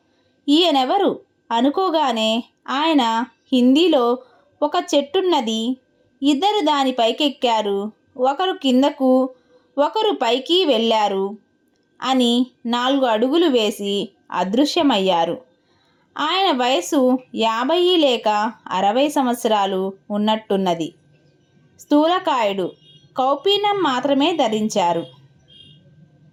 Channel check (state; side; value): identical; both; correlation 1.00